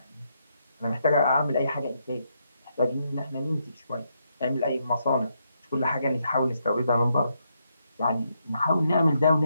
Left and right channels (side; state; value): both; inverted; correlation -0.79